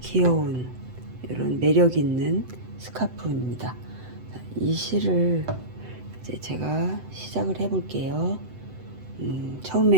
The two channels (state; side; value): late; left; 7.9 ms